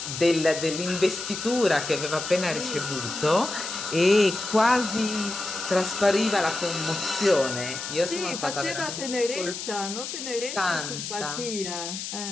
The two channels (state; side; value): noise; left; hiss, 7 dB below the sound